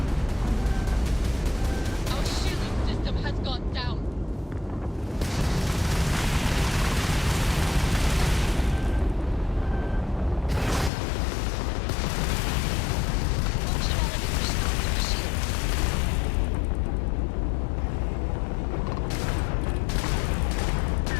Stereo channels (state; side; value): drops out; right; at 10.9 s